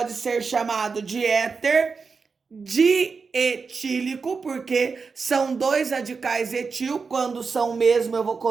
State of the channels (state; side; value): quieter; left; 5.0 dB